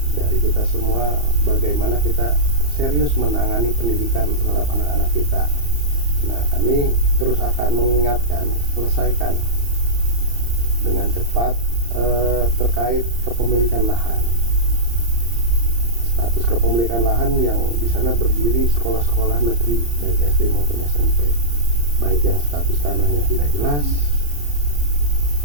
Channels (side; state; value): left; late; 34 ms